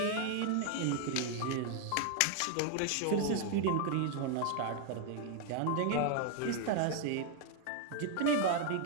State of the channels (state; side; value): different; both; correlation 0.00